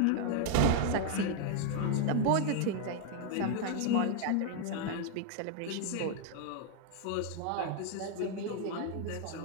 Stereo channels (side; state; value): both; different; correlation 0.00